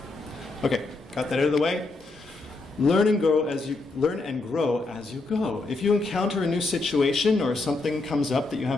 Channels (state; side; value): quieter; right; 3.4 dB